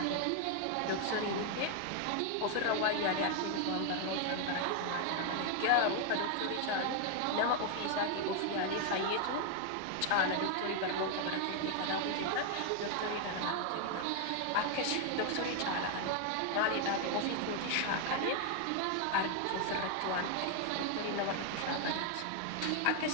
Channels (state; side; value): different; both; correlation 0.00